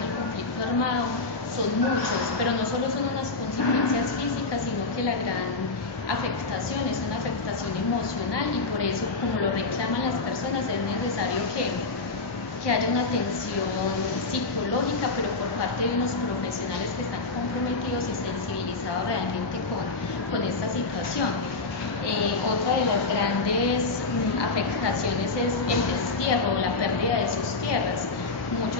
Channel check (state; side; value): quieter; right; 3.8 dB